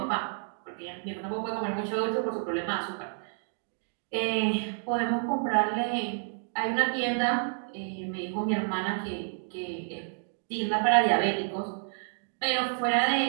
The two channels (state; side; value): silent; left; 58 dB below the other